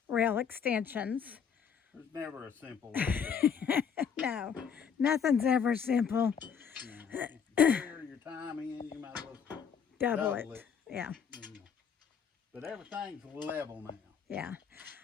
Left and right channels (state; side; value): quieter; right; 7.0 dB